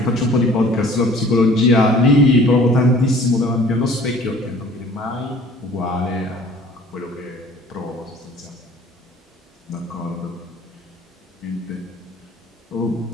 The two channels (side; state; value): both; normal; correlation 0.51